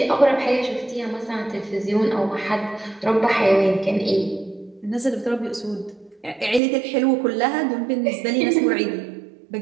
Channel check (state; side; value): drops out; left; at 6.6 s